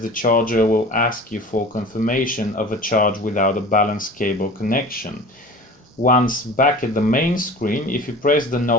charger will ask you for confirmation of a charge without a balance cable connection. Once back at the main screen, if you press the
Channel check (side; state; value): both; normal; correlation 0.39